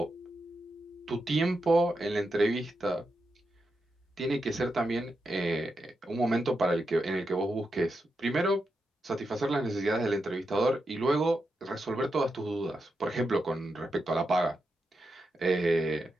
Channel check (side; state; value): both; normal; correlation 0.86